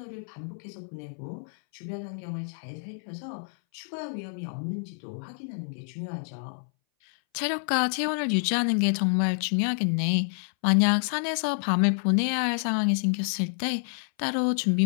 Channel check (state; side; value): silent; right; 59 dB below the other